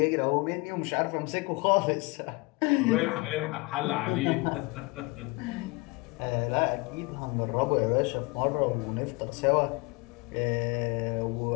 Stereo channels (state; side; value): quieter; right; 25.6 dB